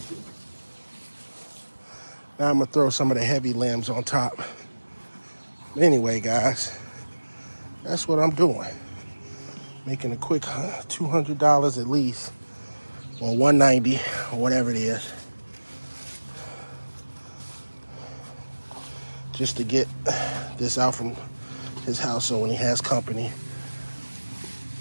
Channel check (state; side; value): inverted; both; correlation -1.00